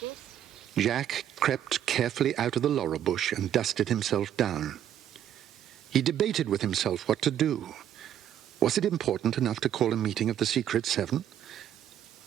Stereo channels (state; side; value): quieter; left; 10.5 dB